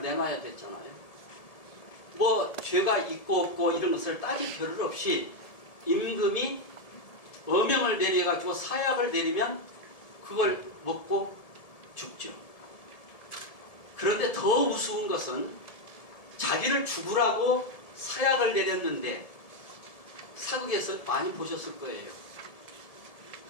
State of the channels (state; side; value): late; right; 1.7 ms